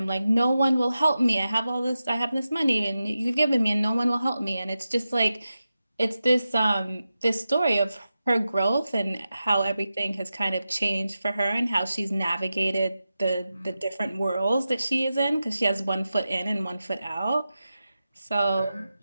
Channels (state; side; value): inverted; both; correlation -0.92